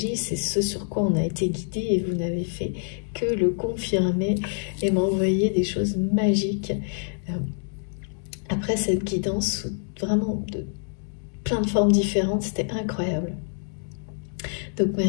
c'est ce sur quoi on a été guidé et vous n'avez fait que le confirmer et m'envoyer des choses magiques. Après cette guidance, vraiment de plein de formes différentes, c'était incroyable. Donc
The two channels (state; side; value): silent; right; 61 dB below the other